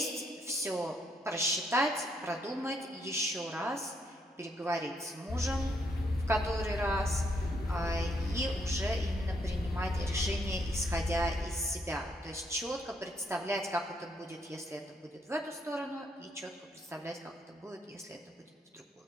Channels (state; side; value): normal; both; correlation 0.74